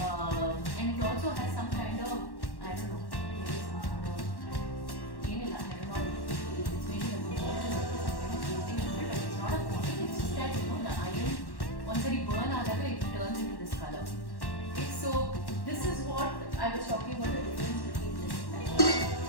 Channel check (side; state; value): right; late; 1.1 ms